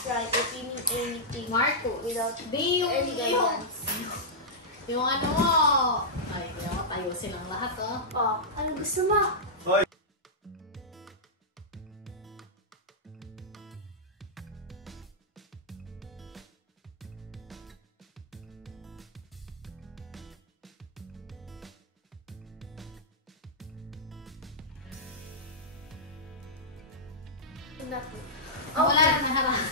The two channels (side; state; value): both; normal; correlation -0.11